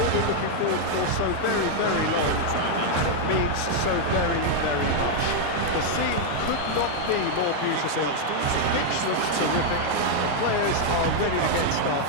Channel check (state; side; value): different; both; correlation 0.00